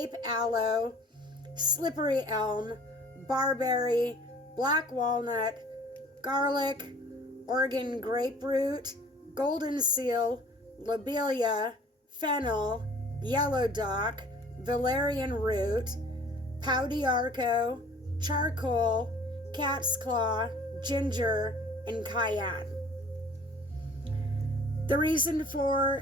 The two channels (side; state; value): both; normal; correlation 0.51